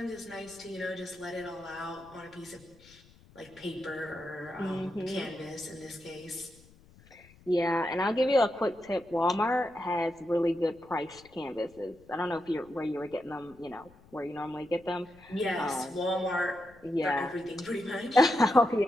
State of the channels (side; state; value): left; noise; rumble, 26 dB below the sound